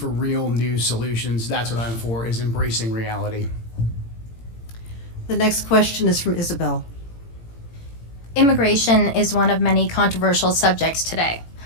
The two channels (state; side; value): late; right; 18 ms